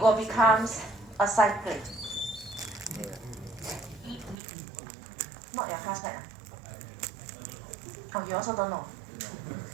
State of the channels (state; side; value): drops out; left; at 4.4 s